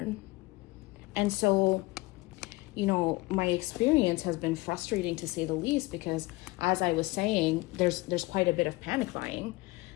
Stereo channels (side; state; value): right; quieter; 21.8 dB